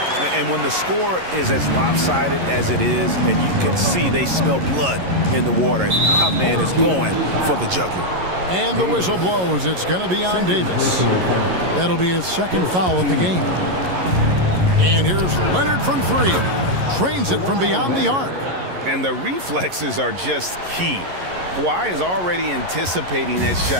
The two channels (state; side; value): late; left; 11 ms